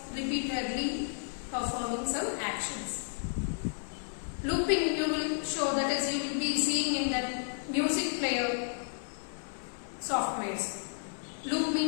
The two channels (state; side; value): silent; right; 56 dB below the other